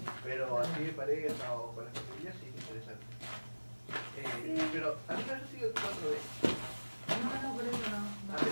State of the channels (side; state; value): both; inverted; correlation -1.00